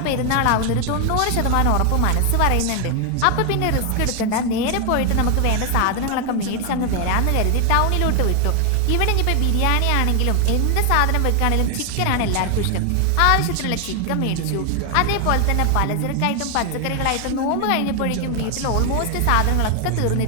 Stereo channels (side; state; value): both; different; correlation 0.00